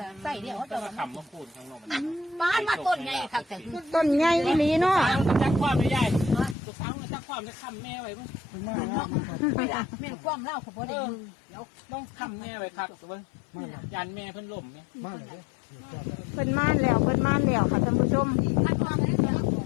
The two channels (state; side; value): drops out; right; at 6.6 s